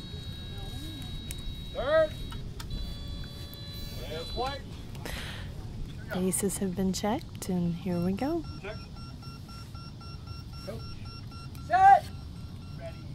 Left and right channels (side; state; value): both; identical; correlation 1.00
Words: Third. There's white. Bases have been checked, and here we go. Set.